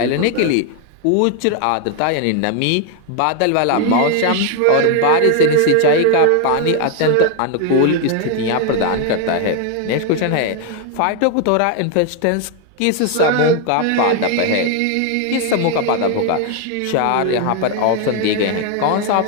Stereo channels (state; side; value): different; both; correlation 0.01